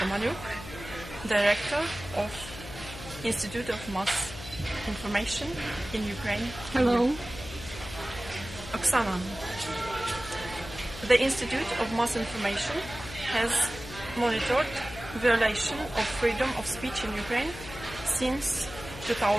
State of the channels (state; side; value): noise; left; hum, 13 dB below the sound